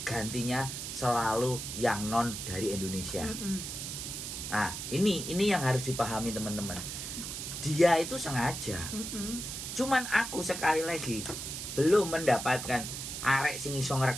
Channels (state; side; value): noise; right; hiss, 6 dB below the sound